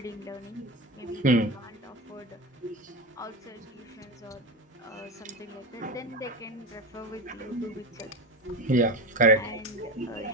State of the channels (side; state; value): both; normal; correlation 0.22